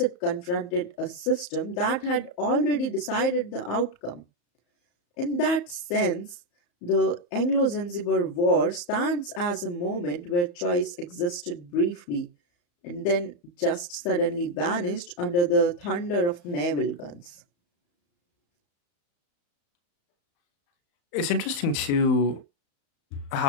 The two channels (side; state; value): right; late; 35 ms